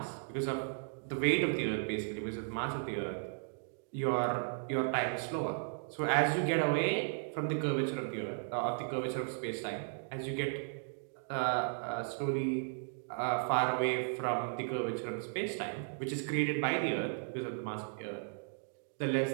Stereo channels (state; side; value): silent; left; digital silence